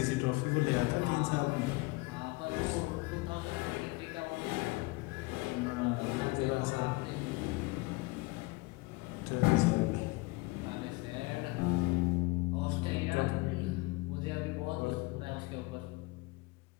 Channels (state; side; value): quieter; right; 23.6 dB